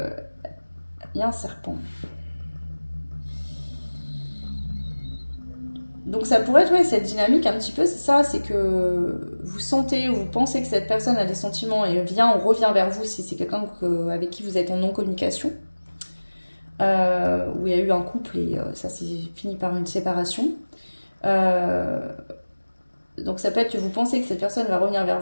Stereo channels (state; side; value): inverted; both; correlation -1.00